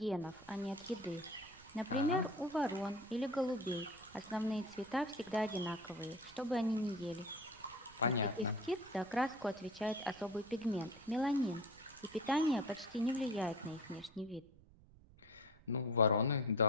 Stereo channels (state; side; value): noise; right; rumble, 24 dB below the sound